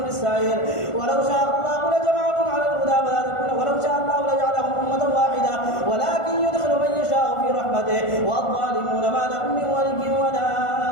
السعير. ولو شاء الله لجمعهم على الهدى ولو شاء الله لجعلهم أمة واحدة ولكن يدخل من يشاء في رحمته والظالمون ما لهم من ولي ولا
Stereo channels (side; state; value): right; late; 1.5 ms